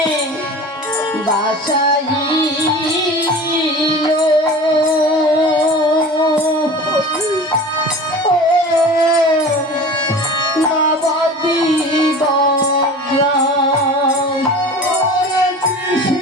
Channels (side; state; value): both; normal; correlation 0.37